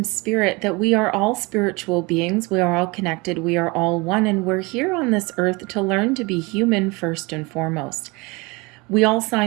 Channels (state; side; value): quieter; left; 26.1 dB